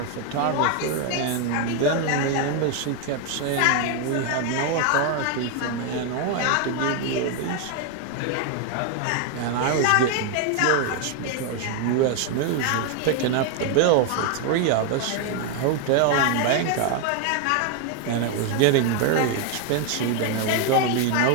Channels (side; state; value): both; different; correlation 0.01